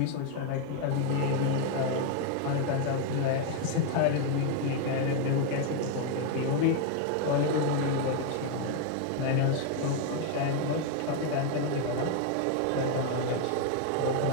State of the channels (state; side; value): different; both; correlation 0.01